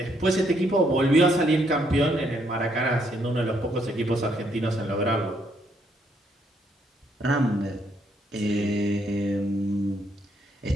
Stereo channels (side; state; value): both; normal; correlation 0.72